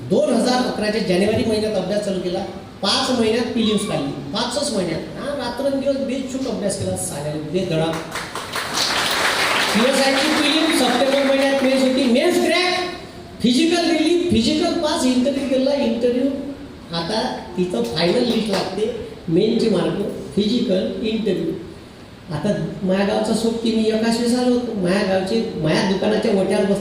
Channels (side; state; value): both; identical; correlation 1.00